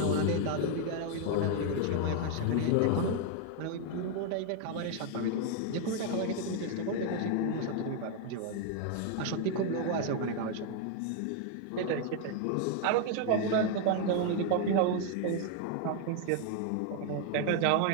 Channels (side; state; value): both; different; correlation 0.00